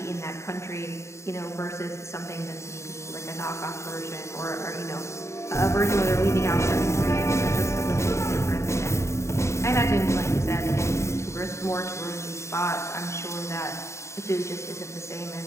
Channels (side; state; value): right; late; 0.14 ms